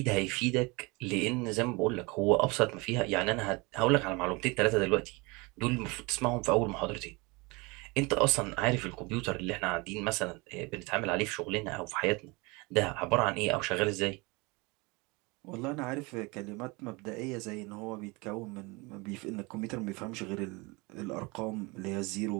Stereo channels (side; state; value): left; quieter; 26.4 dB